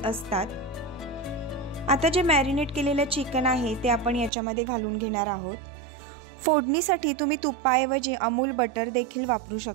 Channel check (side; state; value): left; drops out; at 4.3 s